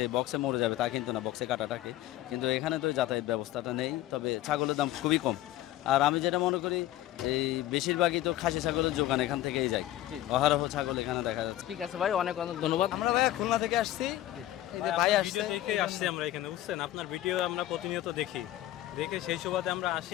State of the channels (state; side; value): quieter; right; 14.3 dB